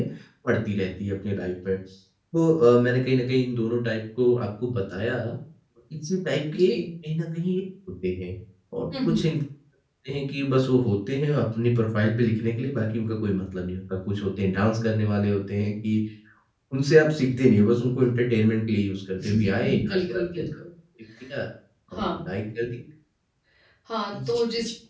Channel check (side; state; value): both; identical; correlation 1.00